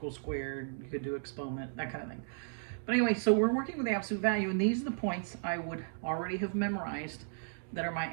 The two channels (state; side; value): silent; left; digital silence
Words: squared, you could do exponent, that kind of thing. But anyway, so we're working with the absolute value, and these are the points I would already have memorized that are my